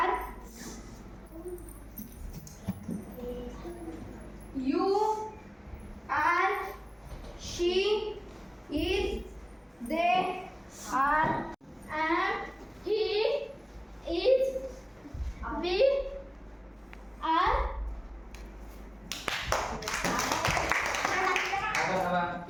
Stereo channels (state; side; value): identical; both; correlation 1.00